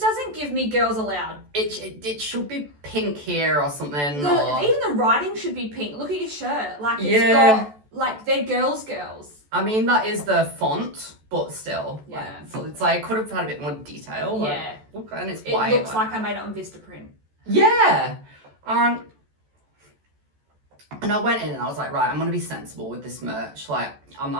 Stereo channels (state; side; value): late; left; 14 ms